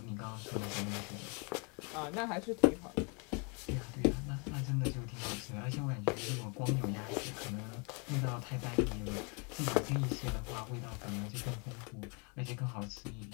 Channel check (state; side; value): quieter; right; 34.2 dB